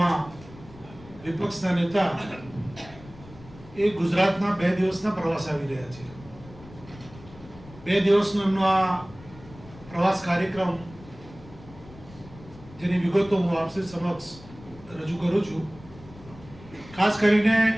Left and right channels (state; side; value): noise; left; rumble, 19 dB below the sound